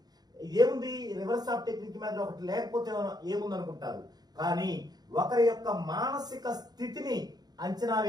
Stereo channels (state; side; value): late; left; 0.19 ms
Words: ఏముంది రివర్స్ ఆఫ్ టెక్నిక్ మెథడ్ ఒకటి లేకపోతే ఏముంది అనుకుంటారు. కానీ ఒకరి యొక్క మానసిక స్థితిని అంచనా